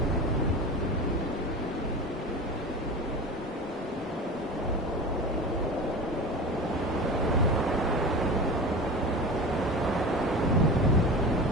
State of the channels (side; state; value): both; normal; correlation 0.32